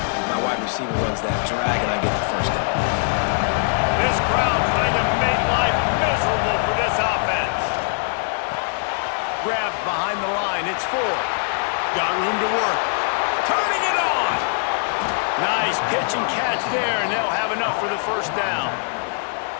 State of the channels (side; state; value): right; silent; 64 dB below the other